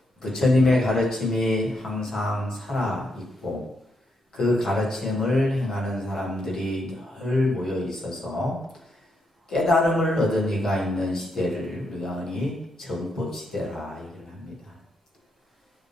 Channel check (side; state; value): both; normal; correlation 0.80